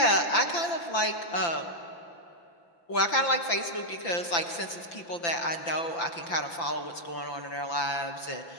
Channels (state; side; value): late; right; 5.9 ms